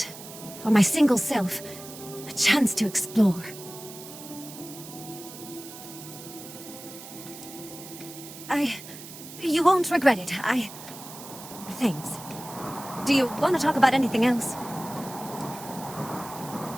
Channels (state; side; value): noise; right; hiss, 14 dB below the sound